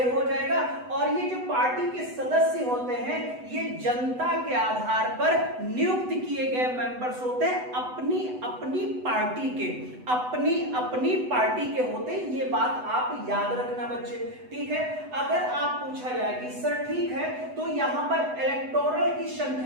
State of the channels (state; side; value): late; left; 8.0 ms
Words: हो जाएगा। और ये जो पार्टी के सदस्य होते हैं ये जनता के आधार पर नियुक्त किए गए मेंबर्स होते हैं, अपनी अपनी पार्टी के होते हैं। ये बात आप याद रखना बच्चे, ठीक है। अगर आप पूछा जाए कि सर ठीक है तो यहां पर इलेक्टोरल की